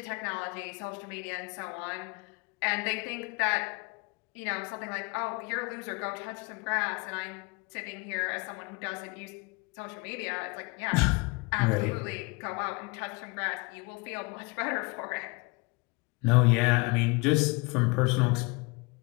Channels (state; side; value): quieter; right; 28.6 dB